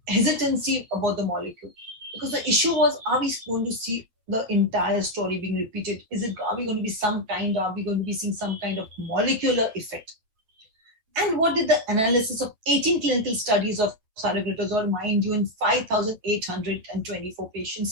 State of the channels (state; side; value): late; left; 9.3 ms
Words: hesitancy about the molecule. Because the issue was, are we going to see the entire story being repeated? Are we going to be seeing some kind of molecular effect? And what did the analysis of 18 clinical studies of Saroglitazar, mind you, in 5,824